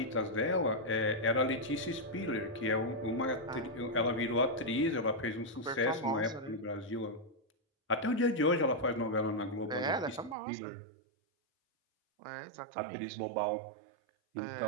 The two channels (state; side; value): drops out; left; at 10.4 s